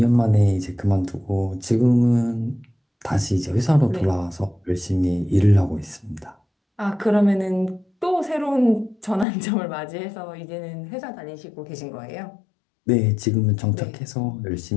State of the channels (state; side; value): drops out; right; at 9.2 s